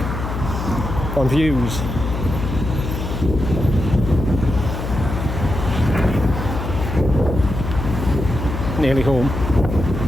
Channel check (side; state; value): left; noise; hum, 5 dB below the sound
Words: on views. Nearly home,